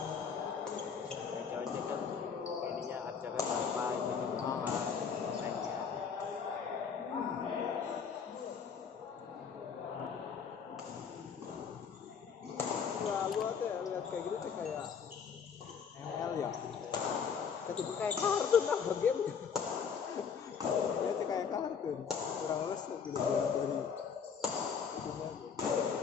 ojek kan ininya harganya berapa ini berapa naiknya. Wah, gua tuh ya lihat kayak gitu tuh kayak ML ya. Ketika kayak kartun lah game. Ya tuh kayak kartun. Kurang lulus gitu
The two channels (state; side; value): quieter; right; 6.6 dB